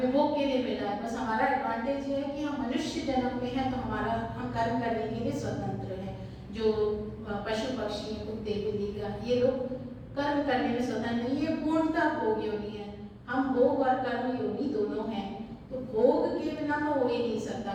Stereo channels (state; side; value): identical; both; correlation 1.00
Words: भोग के लिए मिला है। बस हमारा एडवांटेज ये है कि हम मनुष्य जन्म में हैं तो हम कर्म करने के लिए स्वतंत्र हैं। जो पशु पक्षी हैं, कुत्ते बिल्ली का, ये लोग कर्म करने में स्वतंत्र नहीं है, पूर्णतः भोग योनि है। हम भोग और कर्म योनि दोनों हैं। तो भोग के बिना तो हो ही नहीं सकता,